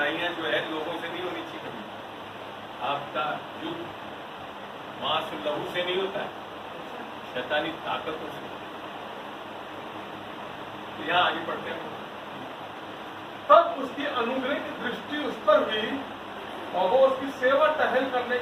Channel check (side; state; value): both; identical; correlation 1.00